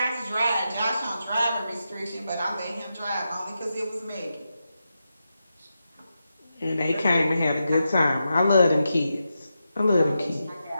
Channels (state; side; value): inverted; both; correlation -0.88